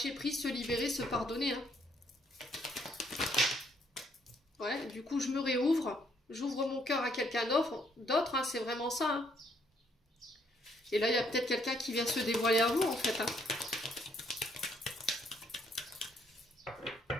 prise, se libérer, se pardonner. Hein. Ouais, du coup, je me réouvre. J'ouvre mon cœur à quelqu'un d'autre. Hein, c'est vraiment ça. Hein. Et là, il y a peut-être quelqu'un qui vient se dévoiler à vous, en fait. Hein.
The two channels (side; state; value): both; normal; correlation 0.69